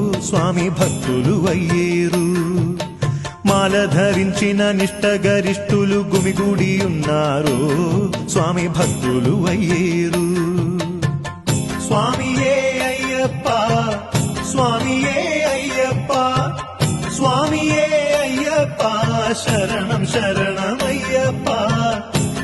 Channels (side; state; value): both; identical; correlation 1.00